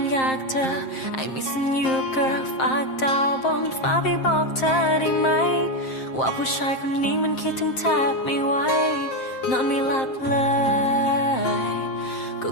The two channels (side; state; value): right; late; 7.6 ms